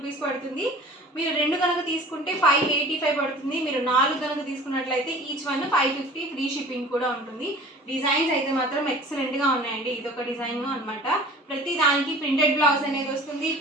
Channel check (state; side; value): normal; both; correlation 0.44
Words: పడుతుంది. మీరు 2 కనుక తీసుకుంటే 585 పడుతుంది. మీరు 4 కనుక తీసుకున్నట్లయితే ఈచ్ వన్ 550 ఫ్రీ షిప్పింగ్ కూడా ఉంటుంది. డిజైన్స్ అయితే మాత్రం ఎక్సలెంట్ గా ఉన్నాయండి. ఇదొక డిజైన్ అన్నమాట. ప్రతి దానికి ప్రింటెడ్ బ్లౌజ్ అనేది వస్తుంది.